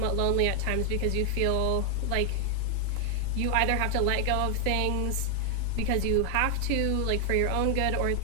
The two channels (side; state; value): both; different; correlation 0.00